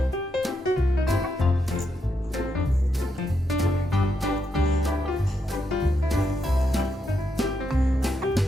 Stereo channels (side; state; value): both; normal; correlation 0.82